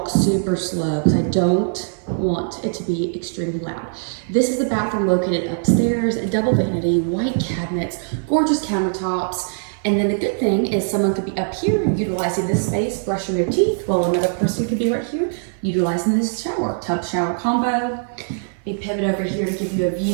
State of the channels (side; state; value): left; silent; 55 dB below the other